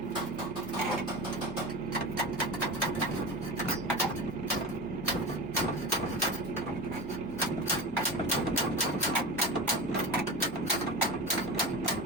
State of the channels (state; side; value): normal; both; correlation 0.27